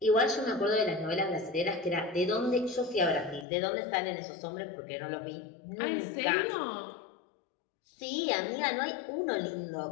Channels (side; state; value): right; drops out; at 3.5 s